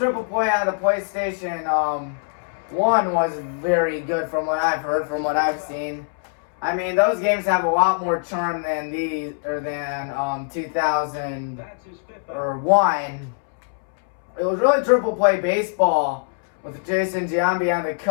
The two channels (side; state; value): right; silent; 64 dB below the other